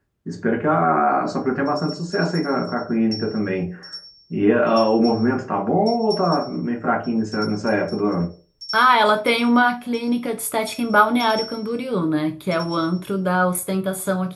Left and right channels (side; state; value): both; identical; correlation 1.00